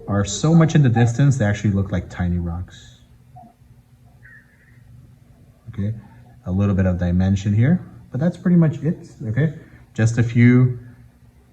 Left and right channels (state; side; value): identical; both; correlation 1.00